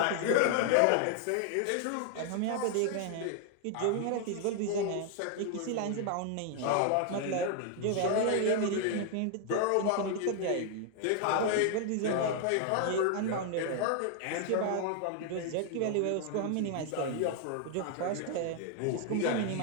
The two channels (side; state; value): both; different; correlation 0.00